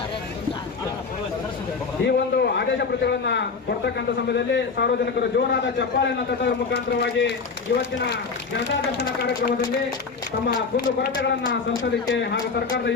ಈ ಒಂದು ಆದೇಶ ಪ್ರತಿಗಳನ್ನ ಕೊಡ್ತಕ್ಕಂಥ ಸಮಯದಲ್ಲಿ ಸಾರ್ವಜನಿಕರು ಜೋರಾದ ಚಪ್ಪಾಳೆಯನ್ನು ತಟ್ಟುವ ಮುಖಾಂತರವಾಗಿ ಇವತ್ತಿನ ಜನತಾ ದರ್ಶನ ಕಾರ್ಯಕ್ರಮದಲ್ಲಿ ತಮ್ಮ ಕುಂದು ಕೊರತೆಗಳನ್ನ ಸಲ್ಲಿಸಲಿಕ್ಕೆ ಹಾಗೂ ಸರ್ಕಾರದ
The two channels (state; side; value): quieter; right; 4.9 dB